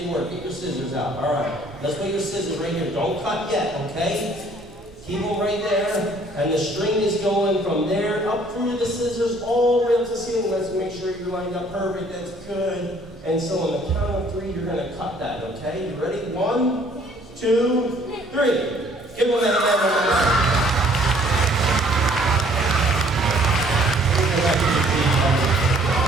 work. Get your scissors out. All right. Let's put your scissors right here. Don't cut yet, okay? Keep them right there, and the string is going from there up through the scissors all the way up to the ceiling. Let's make sure you're lined up perfect. That's good. And so on the count of 3, you're going to cut that, okay? You ready? 1, 2, 3. Give them a hand.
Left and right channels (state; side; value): normal; both; correlation 0.59